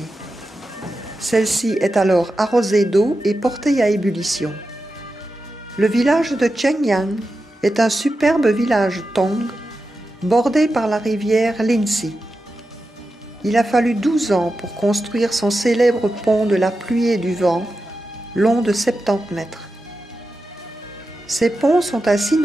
Celle-ci est alors arrosée d'eau et portée à ébullition. Le village de Chengyang est un superbe village Tong, bordé par la rivière Linxi. Il a fallu 12 ans pour construire son célèbre pont de la pluie et du vent, long de 70 mètres. Ces ponts sont ainsi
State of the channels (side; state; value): both; normal; correlation 0.91